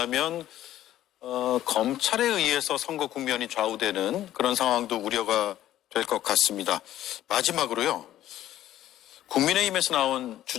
검찰에 의해서 선거 국면이 좌우되는 그런 상황도 우려가 될 것 같습니다. 마지막으로요. 국민의힘에서 나온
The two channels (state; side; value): quieter; right; 13.0 dB